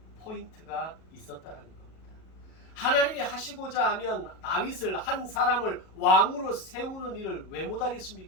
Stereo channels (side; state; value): right; late; 37 ms